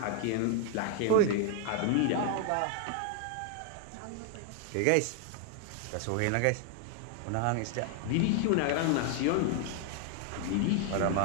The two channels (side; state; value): both; different; correlation 0.00